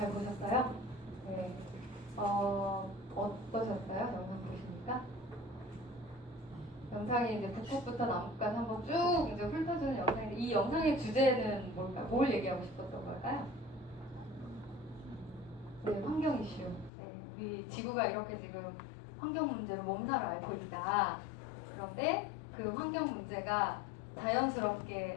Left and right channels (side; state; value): right; drops out; at 16.9 s